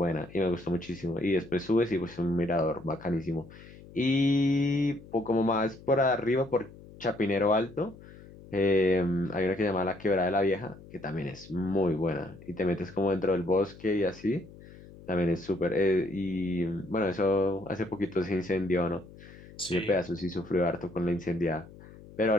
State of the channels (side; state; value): left; noise; hum, 19 dB below the sound